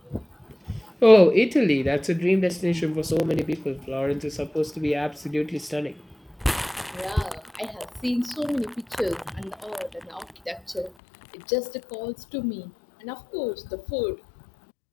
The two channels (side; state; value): right; drops out; at 10.9 s